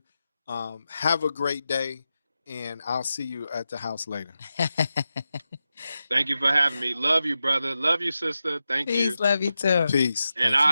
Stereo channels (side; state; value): both; inverted; correlation -0.91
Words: Have a great day, and I'll see you at the house later. Thank you for having me. Love you, brother. Love you, sister. Thank you. Peace. Love you too. Peace. And